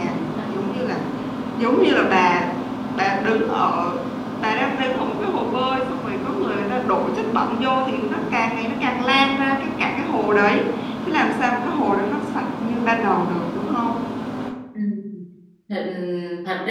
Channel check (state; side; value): identical; both; correlation 1.00